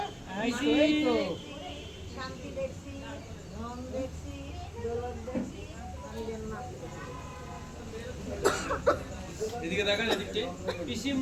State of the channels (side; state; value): both; identical; correlation 1.00